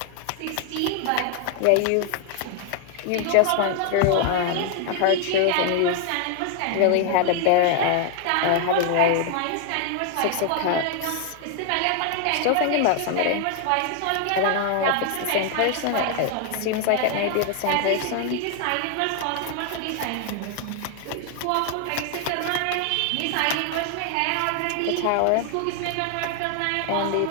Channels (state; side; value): different; both; correlation 0.00